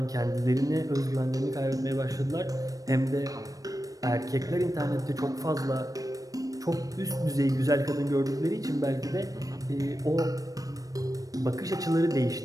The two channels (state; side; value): late; left; 0.17 ms